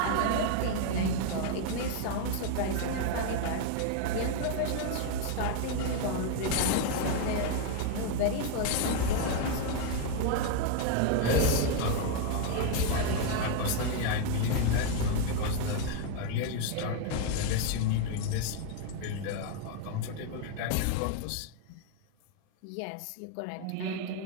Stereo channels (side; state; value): both; different; correlation 0.01